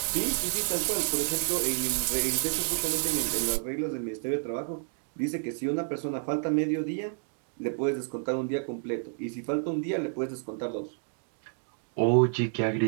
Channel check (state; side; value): silent; left; digital silence